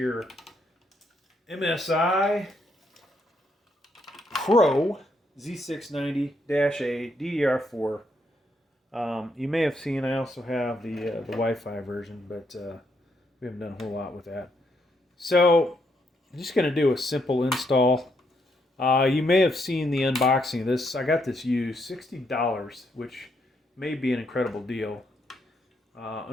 MSI Pro Z690-A D4. You may have seen I also have the Wi-Fi version, but we haven't done a whole lot with that. So I'm just going to do a simple install. You may have seen the unboxing of this. I got this used, $60, which may be an incredible deal.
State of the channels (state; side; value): normal; both; correlation 0.76